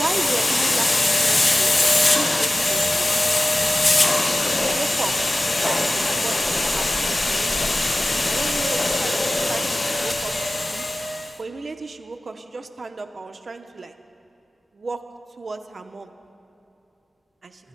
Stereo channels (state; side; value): normal; both; correlation 0.97